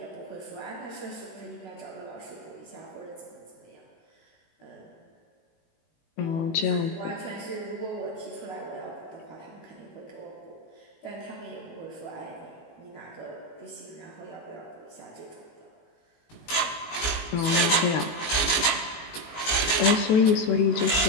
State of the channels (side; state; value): right; late; 19 ms